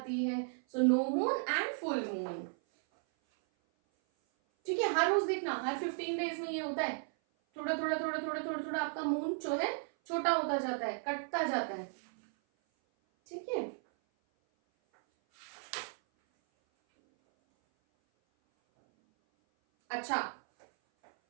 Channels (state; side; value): silent; left; 55 dB below the other